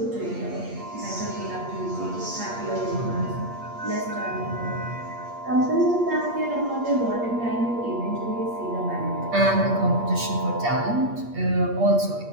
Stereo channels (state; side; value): late; left; 8.5 ms